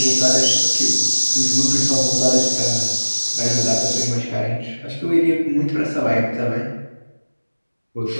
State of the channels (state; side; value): inverted; both; correlation -1.00